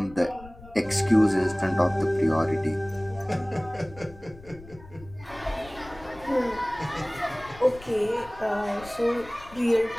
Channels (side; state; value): left; noise; rumble, 19 dB below the sound